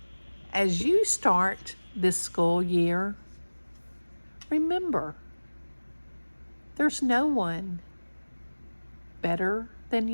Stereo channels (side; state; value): both; inverted; correlation -1.00